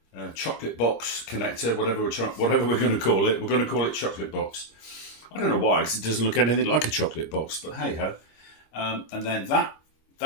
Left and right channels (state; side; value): late; right; 25 ms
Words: chocolate box connector, whatever we're going to call it. We're going to call it chocolate box. I don't know why, because it doesn't look anything like a chocolate box, but hey ho. And then